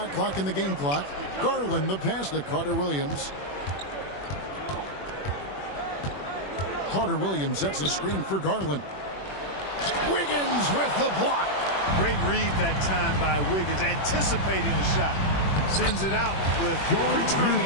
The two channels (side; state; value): right; late; 21 ms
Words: clock and the game clock. Garland, the pass to Carter Williams. Carter Williams sets the screen for Garland. Wiggins with the block. Great read that time by Wiggins, anticipating the shot. Sends it out with return